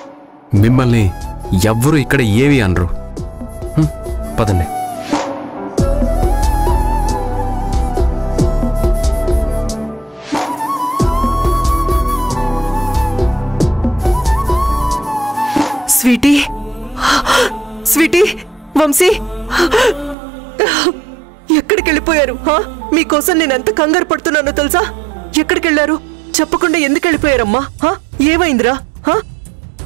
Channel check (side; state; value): left; drops out; at 20.2 s